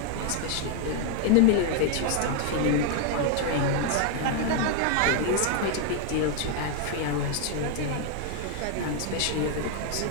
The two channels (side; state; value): both; different; correlation 0.00